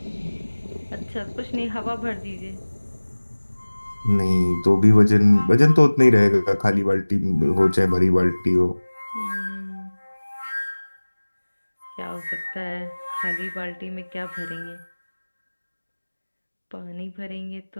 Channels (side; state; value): both; inverted; correlation -1.00